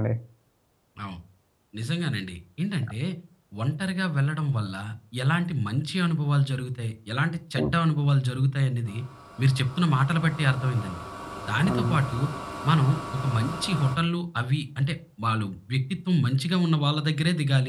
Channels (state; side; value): identical; both; correlation 1.00